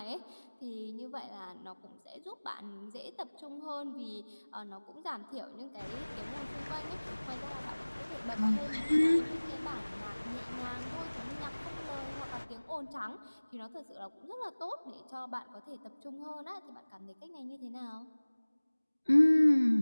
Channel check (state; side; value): inverted; both; correlation -1.00